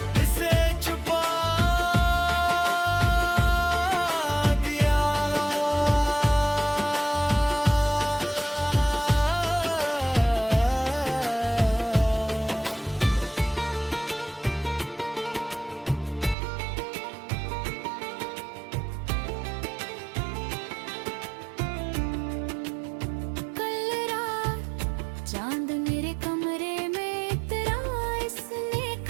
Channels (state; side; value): drops out; left; at 16.4 s